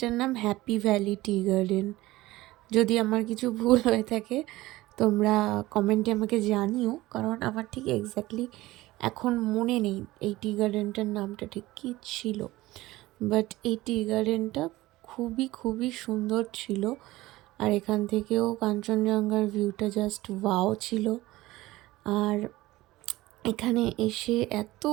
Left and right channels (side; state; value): left; quieter; 18.1 dB